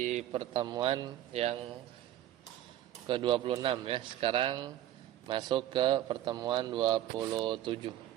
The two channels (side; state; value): left; quieter; 12.6 dB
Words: pertemuan yang ke-26 ya. Sekarang masuk ke pertemuan 27.